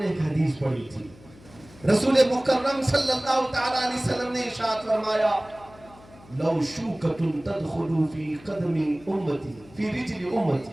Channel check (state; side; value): noise; left; hum, 23 dB below the sound